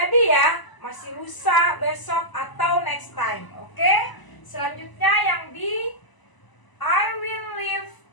ya, masih lusa, besok, atau next time. Oke? Selanjutnya yang B, I will leave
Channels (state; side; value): late; right; 1.0 ms